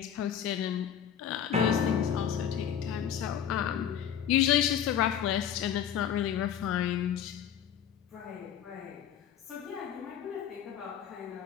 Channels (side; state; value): right; quieter; 9.2 dB